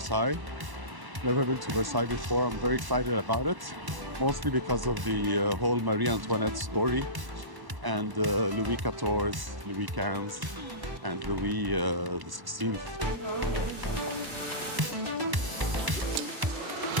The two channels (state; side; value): late; left; 1.0 ms